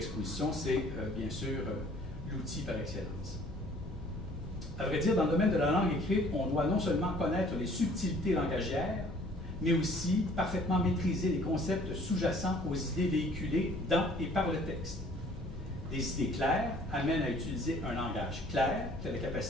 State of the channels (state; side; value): normal; both; correlation 0.55